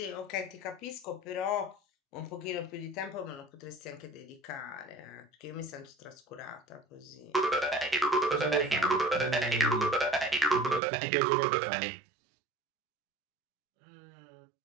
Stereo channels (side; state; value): left; drops out; at 10.8 s